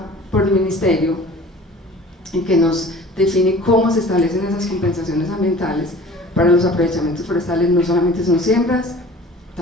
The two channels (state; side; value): normal; both; correlation 0.45